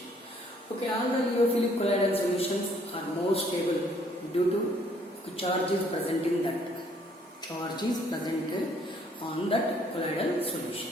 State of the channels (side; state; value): both; normal; correlation 0.63